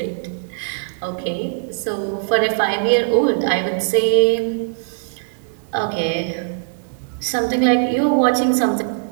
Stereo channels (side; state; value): left; silent; digital silence